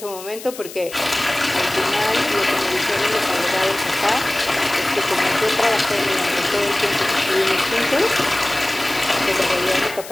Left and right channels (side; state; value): left; noise; hiss, 14 dB below the sound